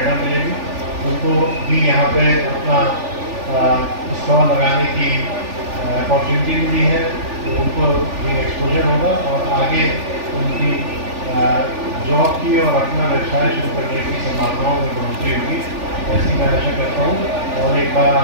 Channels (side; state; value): left; late; 3.4 ms